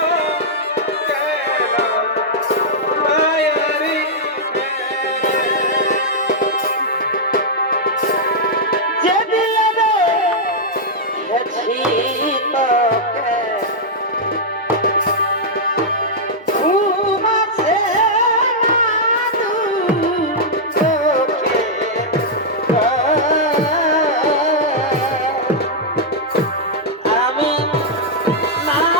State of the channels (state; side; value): normal; both; correlation -0.06